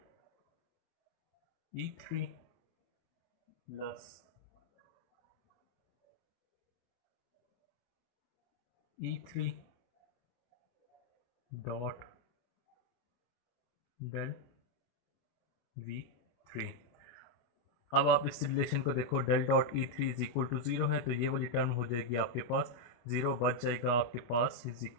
E3 plus E3 dot del V3। अब आप इस रिलेशन को देखो, del dot E three is equal to zero है, तो ये वाली टर्म हो जाएगी आपके पास, ज़ीरो बच जाएगा आपके पास, is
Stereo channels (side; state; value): right; late; 25 ms